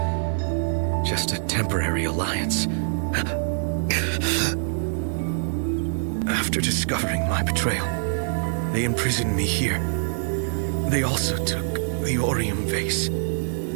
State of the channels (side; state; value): left; silent; digital silence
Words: Just a temporary alliance. After discovering my betrayal, they imprisoned me here. They also took the Orium vase.